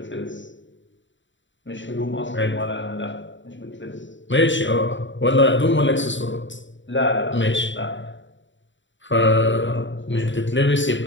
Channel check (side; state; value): right; late; 0.54 ms